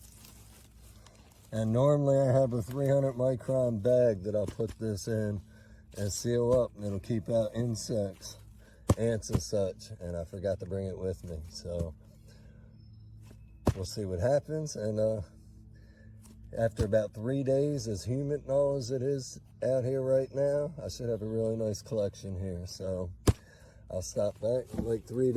And normally I have a 300 micron bag that I'll put this in and seal up, and it'll keep out insects, ants and such, and I forgot to bring it with me. So we'll see what happens. And after about 3 days, as humid and all as it is out here right now, I should have a really nice collection here. So I'll stop back in like 3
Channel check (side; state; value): both; identical; correlation 1.00